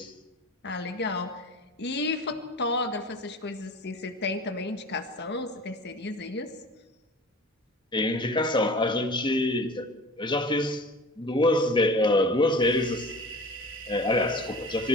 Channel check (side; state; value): both; normal; correlation 0.39